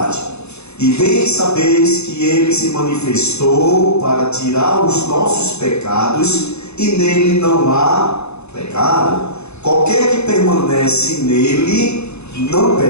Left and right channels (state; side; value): late; right; 0.80 ms